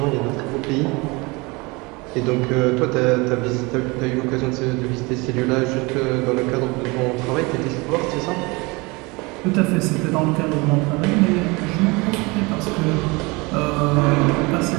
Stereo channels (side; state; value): left; quieter; 25.6 dB